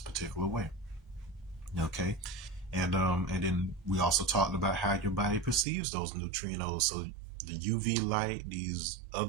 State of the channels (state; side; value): drops out; left; at 5.7 s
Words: particular way. Okay. And then we also talked about how your body perceives those neutrinos. So the UV light, these